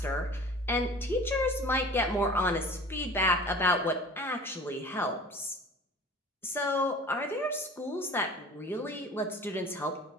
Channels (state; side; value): normal; both; correlation 0.43